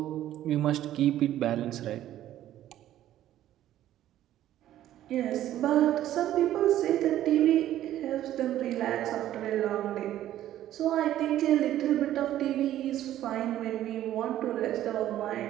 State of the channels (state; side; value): quieter; left; 12.7 dB